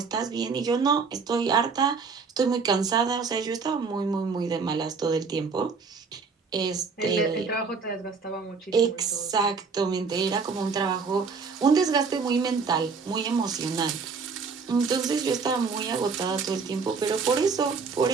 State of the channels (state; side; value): quieter; left; 5.0 dB